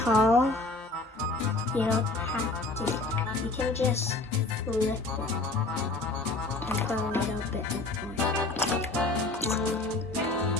you don't have to. You can just flip it and put a little bit of oil.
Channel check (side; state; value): right; quieter; 3.1 dB